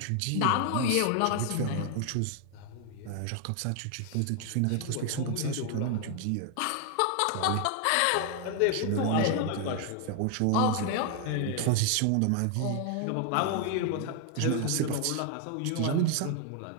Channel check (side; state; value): both; different; correlation 0.00